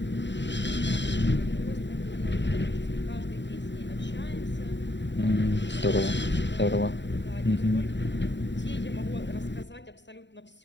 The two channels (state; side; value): late; right; 0.52 ms